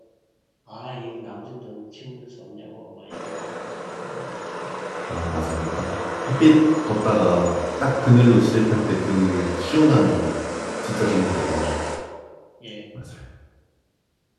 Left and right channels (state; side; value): identical; both; correlation 1.00